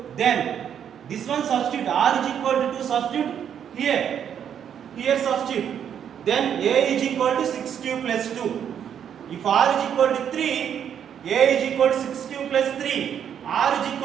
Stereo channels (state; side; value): quieter; left; 8.7 dB